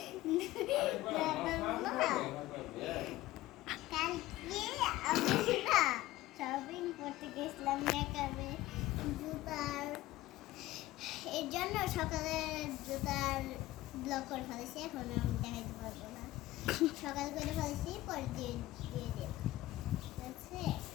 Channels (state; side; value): quieter; right; 16.7 dB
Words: কালকে আমি না শপিং করতে গেছিলাম মেকআপে জুতার এর জন্য সকালে জুতার ব্লক করে ফেলেছি, এখন আমি দেখাইতে পারবো না। সকাল করে ফেলেছি, পরে দিয়ে দেব। ঠিক আছে,